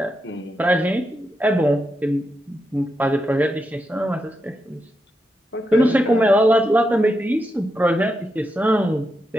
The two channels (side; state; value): both; normal; correlation 0.85